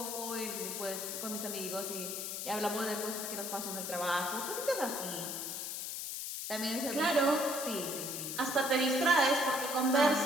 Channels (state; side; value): noise; left; hiss, 4 dB below the sound